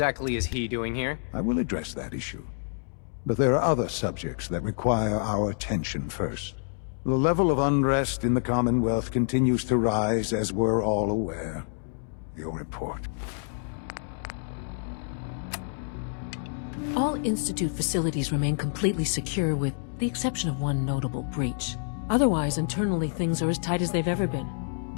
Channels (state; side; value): silent; right; 59 dB below the other